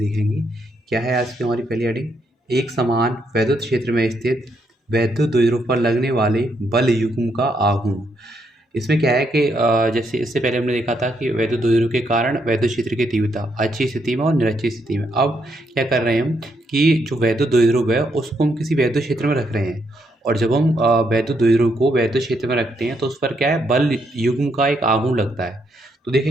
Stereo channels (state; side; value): normal; both; correlation 0.76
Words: क्या है आज की हमारी पहली हेडिंग? एक समान वैद्युत क्षेत्र में स्थित वैद्युत द्विध्रुव पर लगने वाले बल युग्म का आघूर्ण। इसमें क्या है कि जैसे इससे पहले हमने देखा था कि वैद्युत द्विध्रुव के कारण वैद्युत क्षेत्र की तीव्रता अच्छी स्थिति में और निरक्षी स्थिति में। अब क्या कर रहे हैं हम कि जो वैद्युत द्विध्रुव है उसको हम किसी वैद्युत क्षेत्र में रख रहे हैं। और जब हम वैद्युत द्विध्रुव को वैद्युत क्षेत्र में रखते हैं तो उस पर क्या है, बल युग्म का एक आघूर्ण लगता है। तो